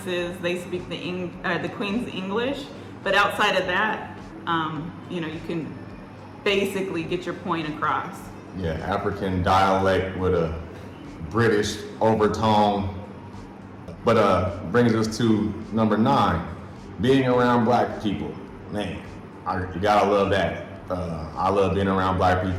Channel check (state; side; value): identical; both; correlation 1.00